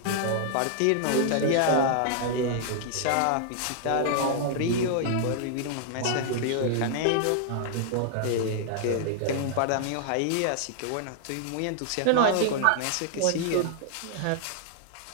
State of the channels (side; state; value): both; different; correlation -0.01